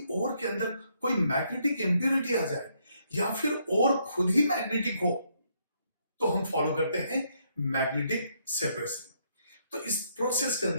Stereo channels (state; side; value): inverted; both; correlation -0.73